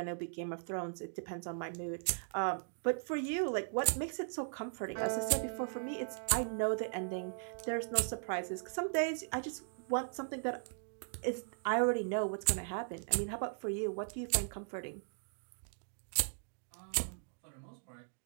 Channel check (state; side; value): silent; left; digital silence